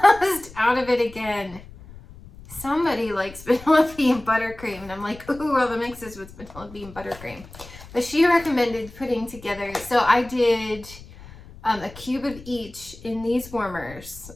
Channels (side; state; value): left; noise; rumble, 18 dB below the sound